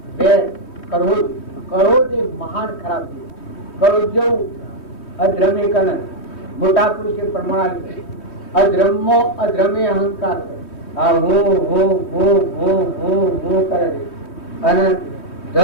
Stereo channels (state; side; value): late; right; 3.2 ms